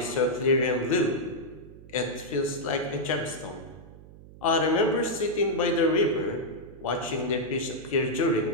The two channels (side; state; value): right; noise; hum, 19 dB below the sound